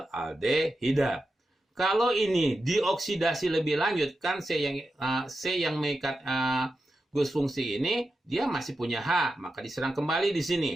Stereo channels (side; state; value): both; normal; correlation 0.90